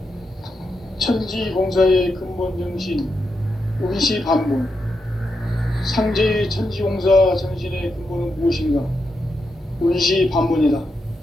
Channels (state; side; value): normal; both; correlation 0.85